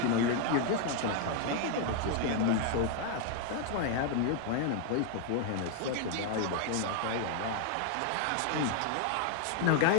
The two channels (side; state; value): both; different; correlation 0.00